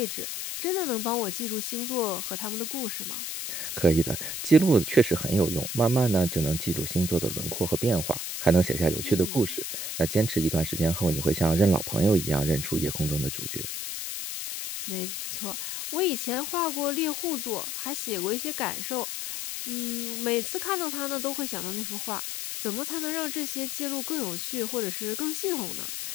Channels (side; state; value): left; noise; hiss, 4 dB below the sound